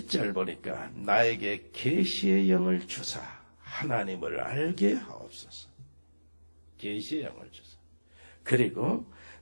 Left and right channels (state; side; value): inverted; both; correlation -1.00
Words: 보니까 나에게 계시의 영을 주사 하나님을 알게 하옵소서. 계시의 영을 주사. 그리고